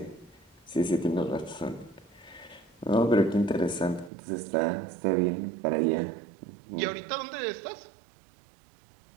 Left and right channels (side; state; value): left; drops out; at 4.1 s